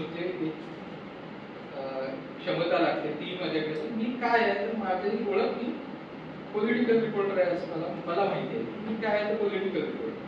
जे क्षमता लागते ती माझ्याकडे. मी काय आहे तर माझी ओळख मी पॉलिटिकल रिपोर्टर आहे असं मला माहिती आहे. मी काय आहे तर पॉलिटिकल रिपोर्टर.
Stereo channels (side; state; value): both; identical; correlation 1.00